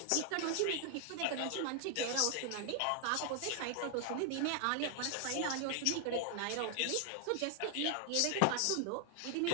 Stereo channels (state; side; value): different; both; correlation 0.00